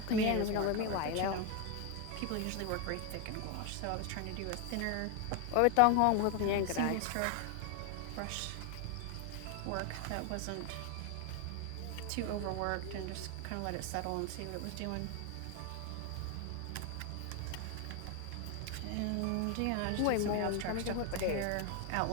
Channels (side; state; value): both; different; correlation 0.01